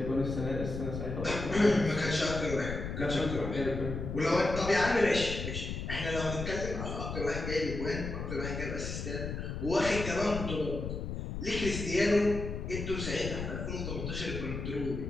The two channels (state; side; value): noise; left; rumble, 5 dB below the sound